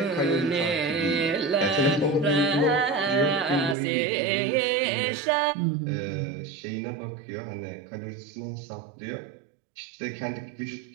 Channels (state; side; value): drops out; left; at 3.8 s